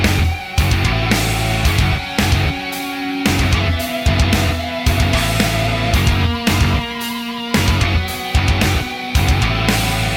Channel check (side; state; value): both; identical; correlation 1.00